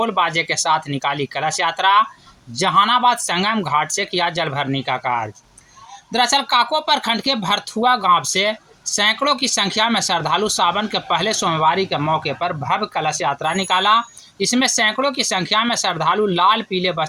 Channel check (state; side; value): identical; both; correlation 1.00